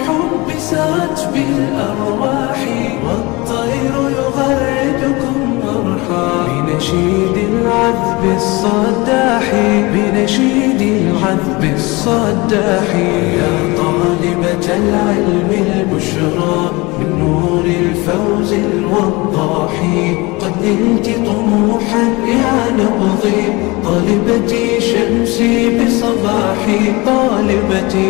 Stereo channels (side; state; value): right; quieter; 24.0 dB